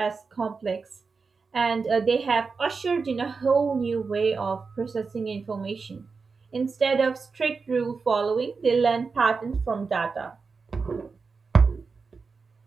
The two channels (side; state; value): left; quieter; 4.7 dB